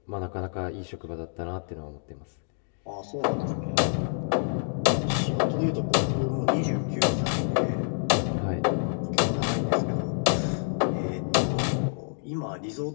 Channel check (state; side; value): silent; right; digital silence